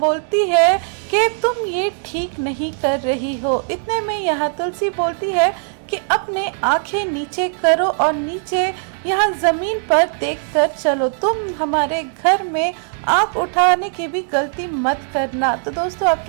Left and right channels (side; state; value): left; silent; 55 dB below the other